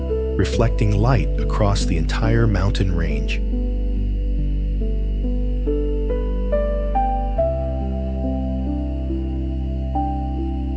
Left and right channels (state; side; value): identical; both; correlation 1.00